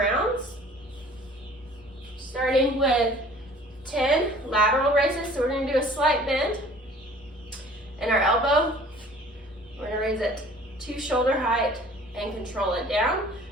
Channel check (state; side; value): normal; both; correlation 0.50